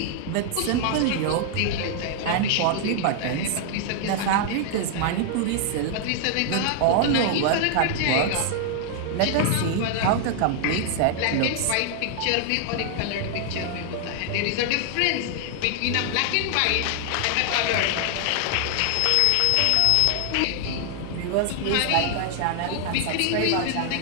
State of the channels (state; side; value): different; both; correlation 0.00